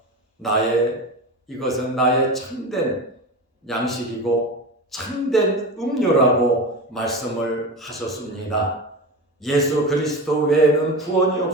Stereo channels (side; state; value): both; normal; correlation 0.26